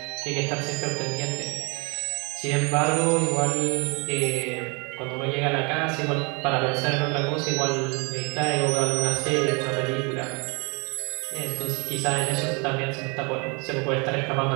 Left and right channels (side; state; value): left; quieter; 31.2 dB